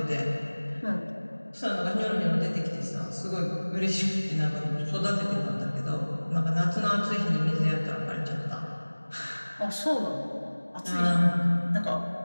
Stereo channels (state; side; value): inverted; both; correlation -1.00